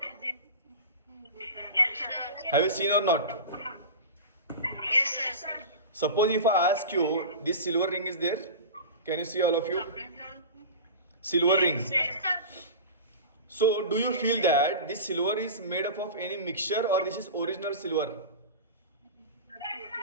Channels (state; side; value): inverted; both; correlation -0.30